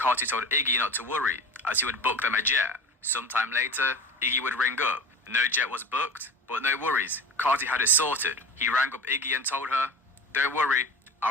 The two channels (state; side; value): normal; both; correlation 0.34